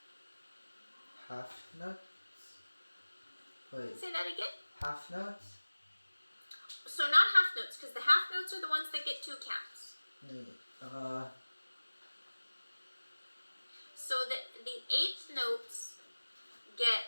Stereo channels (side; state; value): both; inverted; correlation -1.00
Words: Half notes. Wait. Say that again. Half notes. So not half notes, because the half notes are the ones that get 2 counts. So the eighth notes